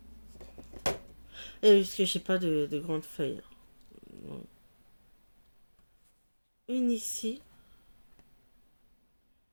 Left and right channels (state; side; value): inverted; both; correlation -1.00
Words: Et parce que j'ai pas de grandes feuilles. Une ici.